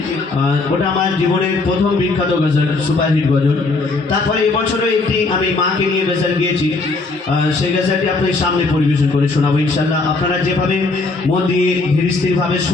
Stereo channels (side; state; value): right; quieter; 3.6 dB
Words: ওটা আমার জীবনের প্রথম বিখ্যাত গজল, সুপারহিট গজল। তারপরে এবছরও একটি আমি মাকে নিয়ে গজল গিয়েছি, সেই গজলটি আপনাদের সামনে পরিবেশন করে শোনাবো ইনশাল্লাহ। আপনারা যেভাবে মন দিয়ে ধীর স্থিরভাবে